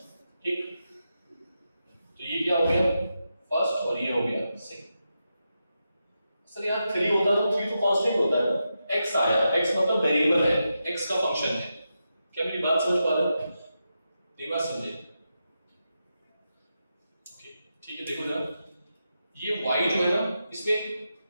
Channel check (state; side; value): inverted; both; correlation -0.87